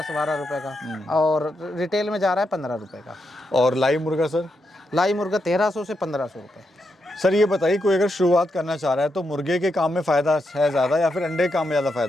रुपए का, और रिटेल में जा रहा है 15 रुपए का। और लाइव मुर्गा सर? लाई मुर्गा 1300 से 1500 रुपए। सर ये बताइए, कोई अगर शुरुआत करना चाह रहा है तो मुर्गे के काम में फ़ायदा है ज़्यादा या फिर अंडे के काम में ज़्यादा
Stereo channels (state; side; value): normal; both; correlation 0.83